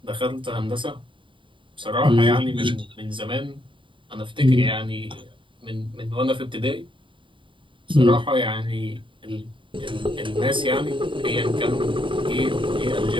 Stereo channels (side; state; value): left; late; 0.24 ms